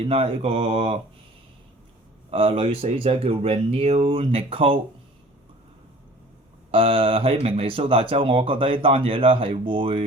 啦，呢個女死者叫 Renelle Nicole。喺明尼蘇達州，我覺得呢單嘢咧係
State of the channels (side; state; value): both; normal; correlation 0.47